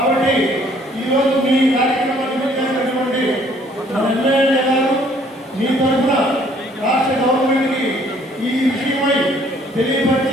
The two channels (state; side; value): normal; both; correlation 0.61